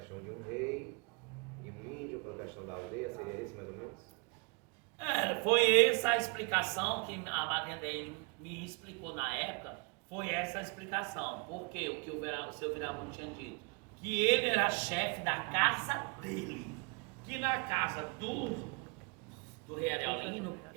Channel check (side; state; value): left; quieter; 31.1 dB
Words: de um rei e um índio, pela questão da aldeia, seria isso mais ou menos? Foi essa a explicação que a madrinha dele me explicou na época, foi essa a explicação. Porque o que o seu Viramundo tinha dito? Que ele era chefe da casa dele, que na casa do Rei Ariolino,